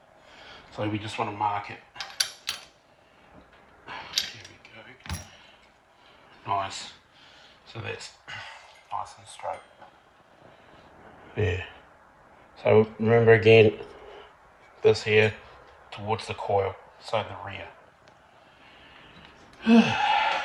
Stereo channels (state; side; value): identical; both; correlation 1.00